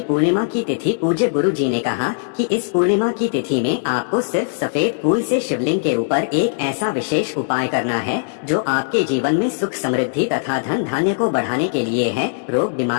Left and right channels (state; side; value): silent; right; 66 dB below the other